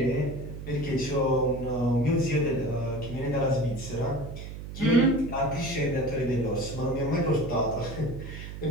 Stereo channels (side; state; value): right; noise; hum, 10 dB below the sound